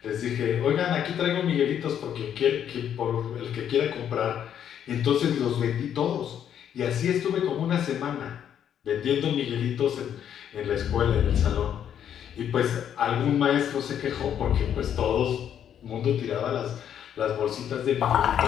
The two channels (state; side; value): quieter; right; 9.4 dB